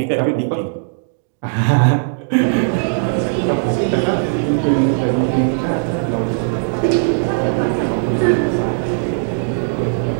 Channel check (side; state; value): left; silent; digital silence